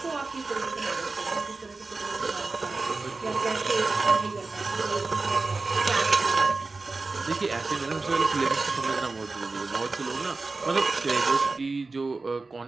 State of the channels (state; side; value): quieter; left; 3.7 dB